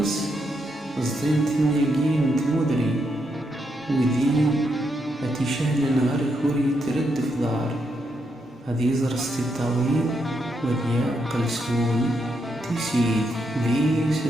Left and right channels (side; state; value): both; normal; correlation 0.80